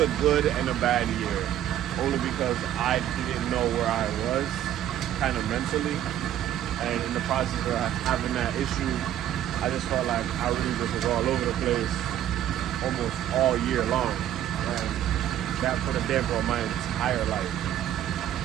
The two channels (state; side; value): quieter; left; 11.5 dB